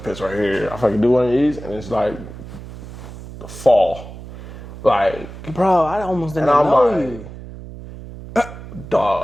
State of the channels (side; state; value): right; noise; hum, 13 dB below the sound